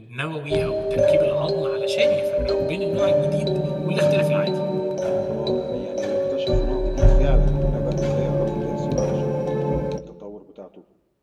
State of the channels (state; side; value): identical; both; correlation 1.00